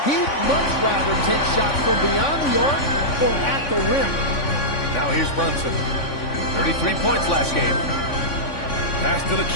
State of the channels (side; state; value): right; late; 3.5 ms